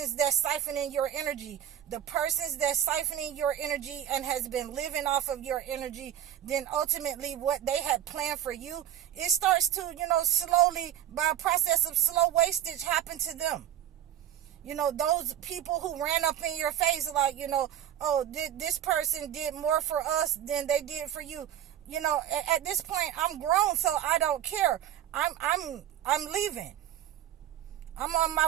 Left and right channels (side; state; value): left; quieter; 11.1 dB